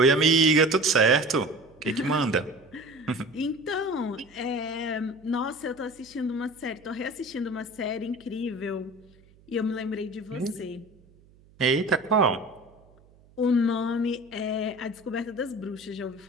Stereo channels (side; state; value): right; noise; hum, 28 dB below the sound